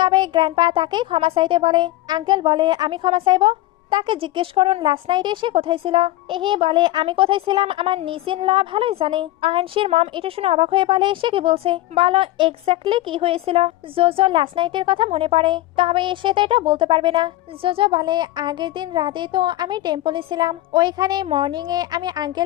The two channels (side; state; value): right; quieter; 16.6 dB